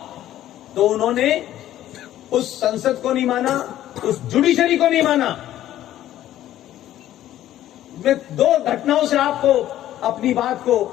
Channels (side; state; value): right; quieter; 12.9 dB